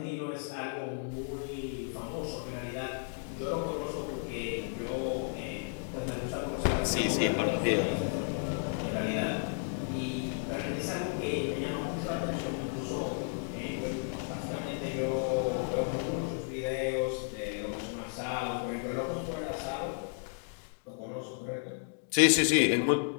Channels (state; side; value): silent; right; 56 dB below the other